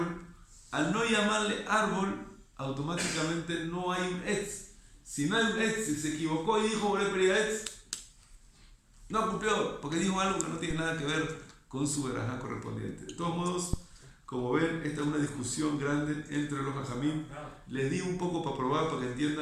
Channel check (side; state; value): both; identical; correlation 1.00